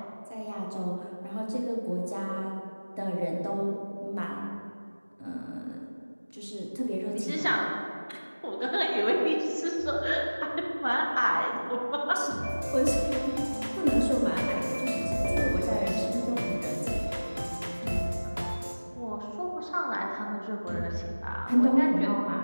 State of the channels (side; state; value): both; inverted; correlation -1.00